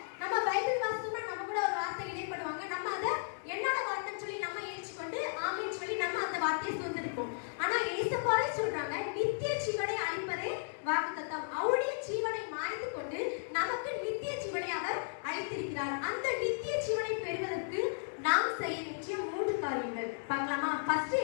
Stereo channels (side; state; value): right; silent; digital silence